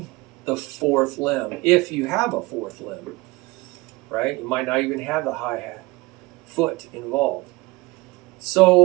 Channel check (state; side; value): quieter; left; 22.0 dB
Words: the 4th limb, if you have a 4th limb, right? You might not even have the hi-hat foot involved.